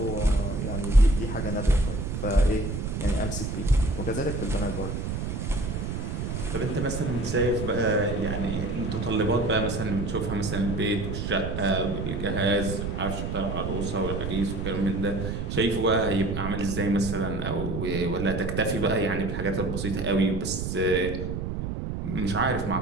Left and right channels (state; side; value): noise; right; rumble, 3 dB below the sound